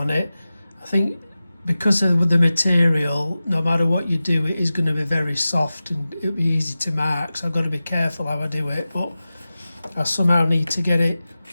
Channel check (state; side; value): inverted; both; correlation -0.95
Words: it. I think because of the material, no matter what you do, it is going to be very soft and it'll be easy to mark, so I've got to be careful how I do it, but I somehow need to get it